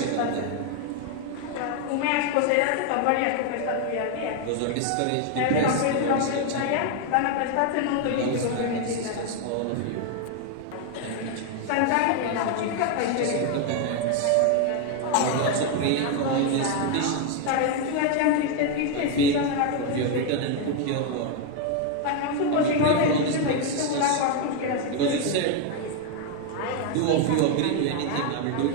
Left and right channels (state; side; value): different; both; correlation 0.01